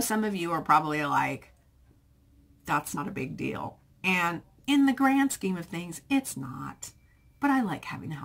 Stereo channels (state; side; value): identical; both; correlation 1.00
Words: of you are probably like, that's not a big deal. And in the grand scheme of things, it's not. But I like having a